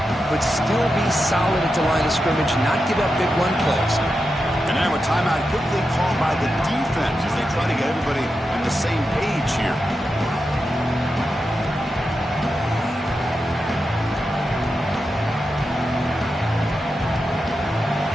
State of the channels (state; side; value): normal; both; correlation 0.89